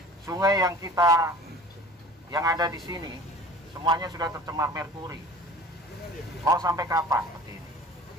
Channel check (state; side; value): normal; both; correlation 0.44